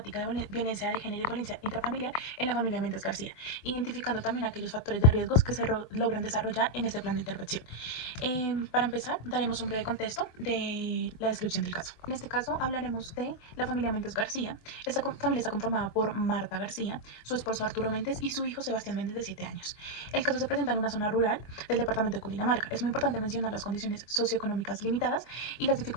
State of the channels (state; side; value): late; right; 24 ms